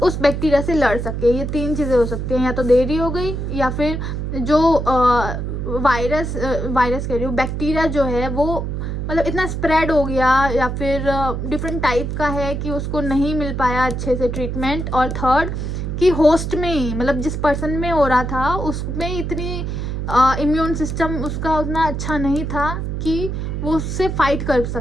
उस बैक्टीरिया से लड़ सके। ये 3 चीज़ें हो सकती हैं, या तो देरी हो गई, या फिर जो वायरस कह रही हूँ, बैक्टीरिया जो है वो मतलब इतना स्प्रेड हो गया, या फिर डिफरेंट टाइप का है कि उसको नहीं मिल पाया अच्छे से ट्रीटमेंट। और थर्ड कि होस्ट में ही, मतलब जिस पर्सन में हो रहा था उसमें इतनी इम्यून सिस्टम उसका उतना अच्छा नहीं था कि वो उससे फाइट कर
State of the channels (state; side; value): noise; right; hum, 3 dB below the sound